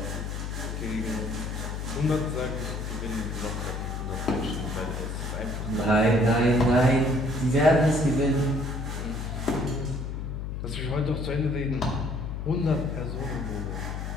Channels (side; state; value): left; noise; hum, 4 dB below the sound